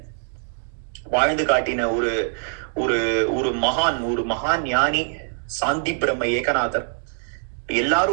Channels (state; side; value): silent; left; digital silence